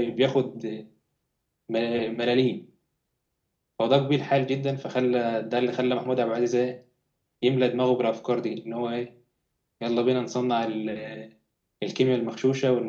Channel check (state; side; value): identical; both; correlation 1.00